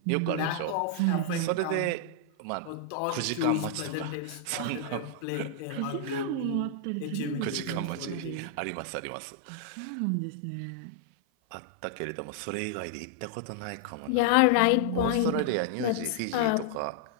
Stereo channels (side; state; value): both; different; correlation 0.00